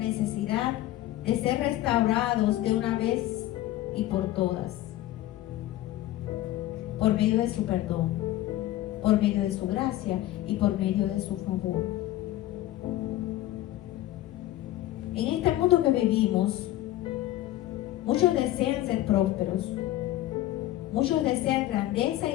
de ser restaurados de una vez y por todas, por medio de su perdón, por medio de su gracia y por medio de su favor. En este mundo que vivimos, muchos desean ser prósperos, muchos desean grandeza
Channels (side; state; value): right; quieter; 14.8 dB